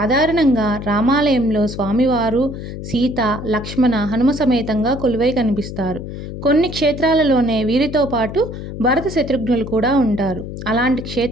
రామాలయంలో స్వామివారు, సీత, లక్ష్మణ, హనుమ సమేతంగా కొలువై కనిపిస్తారు. కొన్ని క్షేత్రాలలోనే వీరితో పాటు భరత శత్రుఘ్నులు కూడా ఉంటారు. అలాంటి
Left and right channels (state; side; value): noise; left; hum, 9 dB below the sound